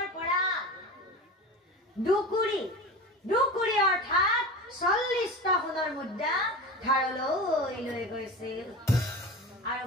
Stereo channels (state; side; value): normal; both; correlation 0.30